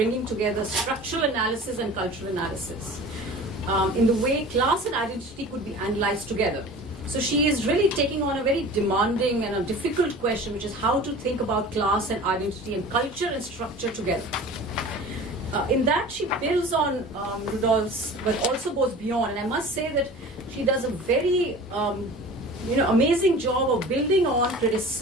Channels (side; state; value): both; normal; correlation 0.40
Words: together structural analysis and cultural analysis in the way class and identity could be analyzed together. So she is really taking on a very demanding and a difficult question, which is how to think about class and identity and culture and structure together. In that, she builds on Rudolph's, but also goes beyond. And I must say that she does a very amazing job of building on,